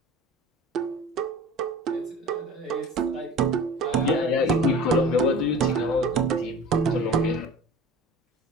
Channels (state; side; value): normal; both; correlation 0.40